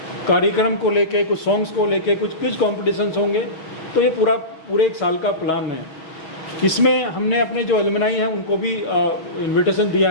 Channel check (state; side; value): late; right; 6.2 ms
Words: कार्यक्रम को लेके, कुछ सॉन्ग्स को लेके, कुछ क्विज कॉम्पिटिशन्स होंगे। तो ये पूरे एक साल का प्लान है। इसमें हमने अपने जो एलुमनाई हैं उनको भी इन्विटेशन दिया